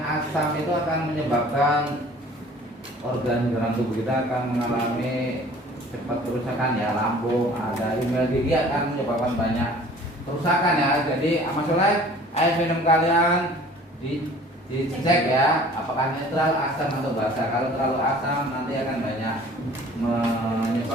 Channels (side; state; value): both; normal; correlation 0.49